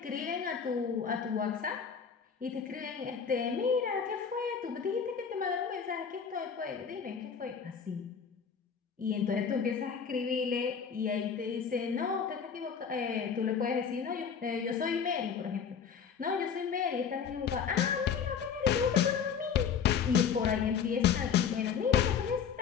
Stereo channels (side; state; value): right; quieter; 6.9 dB